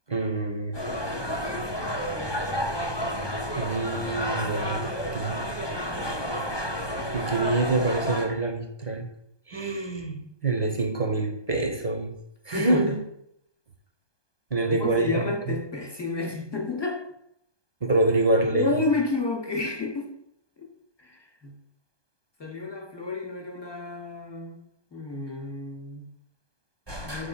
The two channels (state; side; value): late; right; 1.2 ms